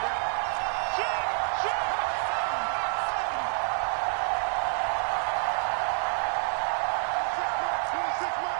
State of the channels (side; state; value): left; silent; 56 dB below the other